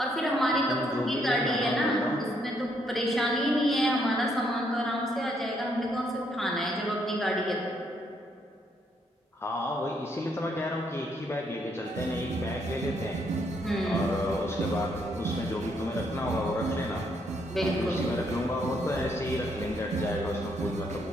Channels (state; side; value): normal; both; correlation 0.73